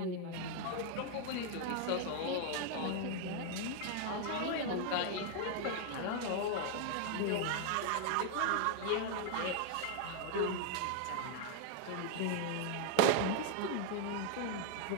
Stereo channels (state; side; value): different; both; correlation 0.01